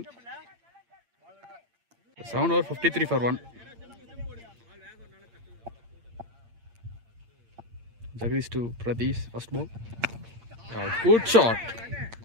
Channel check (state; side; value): late; left; 8.7 ms